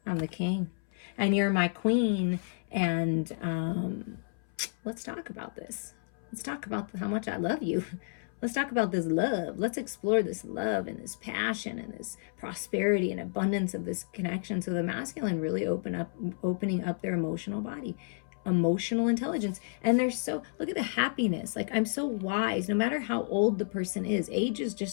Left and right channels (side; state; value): right; silent; 57 dB below the other